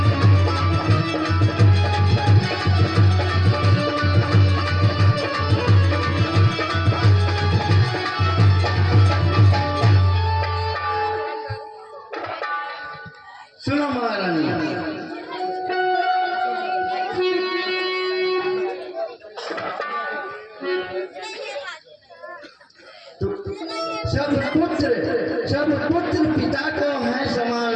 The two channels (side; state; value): both; identical; correlation 1.00